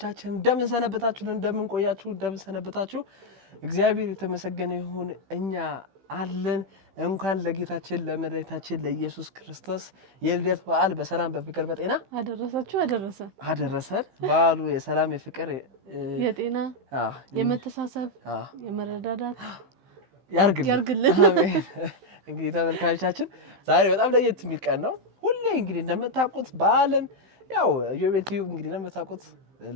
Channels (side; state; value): left; late; 15 ms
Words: እንደምን ሰነበታችሁ? እንደምን ቆያችሁ? እንደምን ሰነበታችሁ? እግዚአብሔር የተመሰገነ ይሁን። እኛ አለን። እንኳን ለጌታችን ለመድኃኒታችን ለኢየሱስ ክርስቶስ የልደት በዓል በሰላም በፍቅር በጤና አደረሰን። በዓሉ የሰላም የፍቅር የጤና የመተሳሰብ የመረዳዳት ያርግልን። አሜን። እንግዲህ ተመልካቾቻችን ዛሬ በጣም ለየት የሚል ቀን ነው። ሁሌ እንግዲህ እንደምታውቁት በዓልን ያው ኢዮቤልዩ እንግዲህ እንደምታውቁት